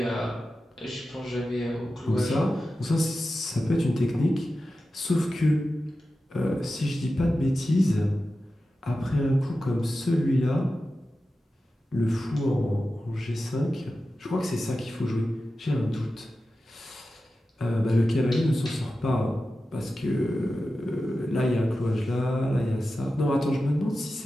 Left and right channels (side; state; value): both; normal; correlation 0.93